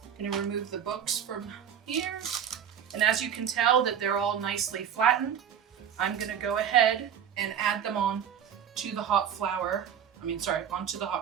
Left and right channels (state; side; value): quieter; left; 8.7 dB